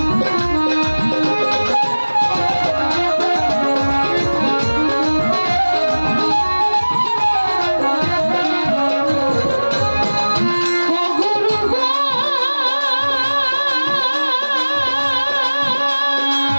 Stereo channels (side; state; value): both; inverted; correlation -1.00